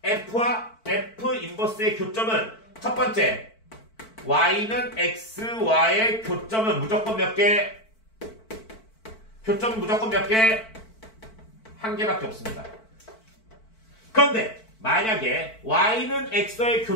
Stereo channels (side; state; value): right; late; 4.5 ms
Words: f와 f 인버스의 교점은 첫 번째 y는 x와의 교점은 무조건 몇 개? 교점은 무조건 몇 개? 한 개밖에 없습니다. 그런데 만약에 y는 x와의